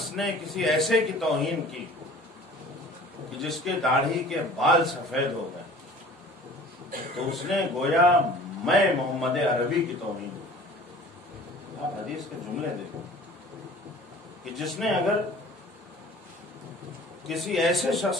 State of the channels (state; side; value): normal; both; correlation 0.46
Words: نے کسی ایسے کی توہین کی کہ جس کے داڑھی کے بال سفید ہو گئے, تو اس نے گویا میں محمد عربی کی توہین کی. آپ حدیث کے جملے دیکھیں کہ جس نے اگر کسی ایسے